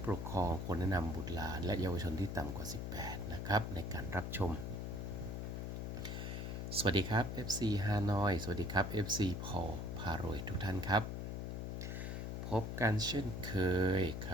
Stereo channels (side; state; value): left; noise; hum, 4 dB below the sound